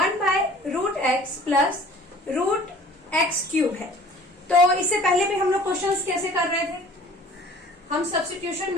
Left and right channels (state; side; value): normal; both; correlation 0.49